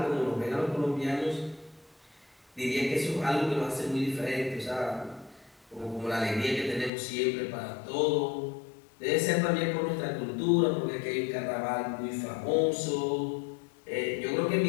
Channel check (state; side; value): drops out; right; at 6.9 s